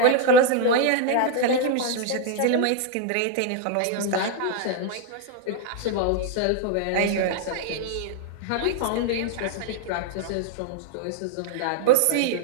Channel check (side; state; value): both; different; correlation 0.01